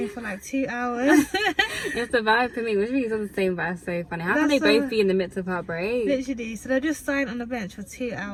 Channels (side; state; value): both; identical; correlation 1.00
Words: for like 2 hours." It's the vibe for me. Which means on the same vibe. So funny. How can they both be in the midst of heartbreak? Literally. So they're just sighing on the bench for 2